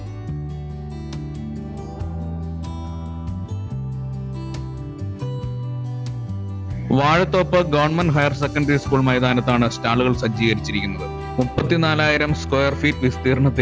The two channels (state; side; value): identical; both; correlation 1.00